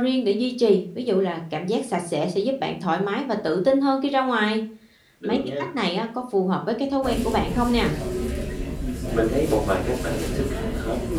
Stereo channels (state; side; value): identical; both; correlation 1.00